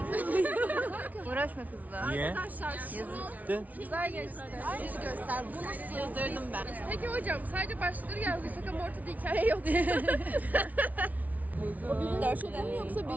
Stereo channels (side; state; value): left; late; 0.073 ms